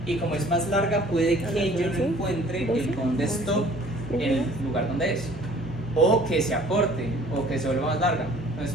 Y como es más larga, puede que yo no encuentre el bond stop en el lugar donde es. O que se acorte, o que se vuelva más larga.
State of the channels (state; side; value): normal; both; correlation 0.53